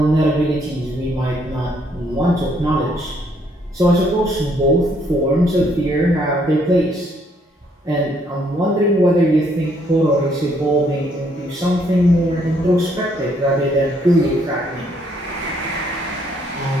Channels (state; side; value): normal; both; correlation 0.69